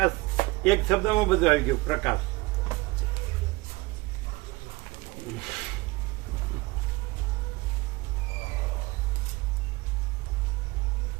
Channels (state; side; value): quieter; left; 22.8 dB